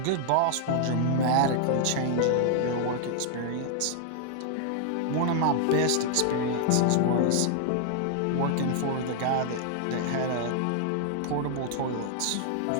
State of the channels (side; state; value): both; different; correlation -0.01